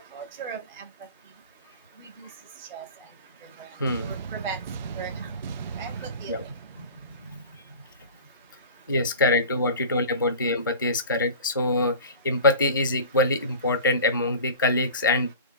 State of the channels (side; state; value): both; inverted; correlation -0.38